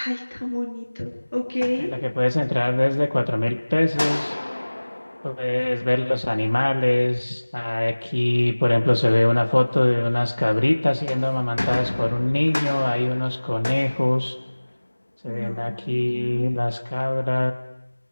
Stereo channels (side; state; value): both; inverted; correlation -1.00